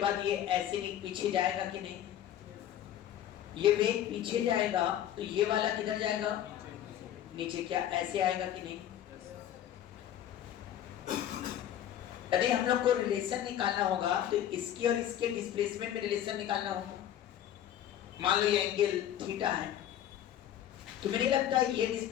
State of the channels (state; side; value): quieter; right; 11.0 dB